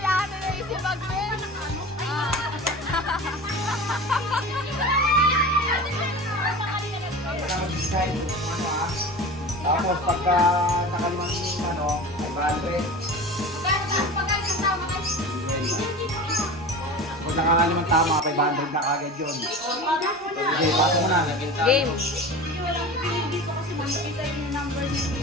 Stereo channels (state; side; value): normal; both; correlation 0.33